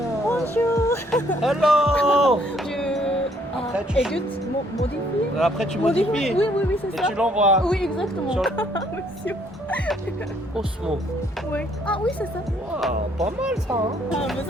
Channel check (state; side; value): normal; both; correlation 0.66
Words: Bonjour. Hello. Je Après, tu- édite, modifie. Après, tu modifies Oui, oui, oui, c'est et ça. tu l'envoies Oui, exactement. sur Monsieur. Osmo. Oui. Ah oui, c'est ça. Waouh, pas mal ça. Hein? Ah,